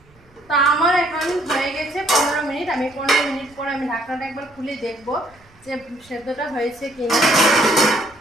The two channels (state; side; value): noise; right; rumble, 30 dB below the sound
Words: তা আমার এখন হয়ে গেছে 15 মিনিট। আমি 15 মিনিট পরে আমি ঢাকনাটা একবার খুলে দেখবো যে সেদ্ধটা হয়েছে কিনা।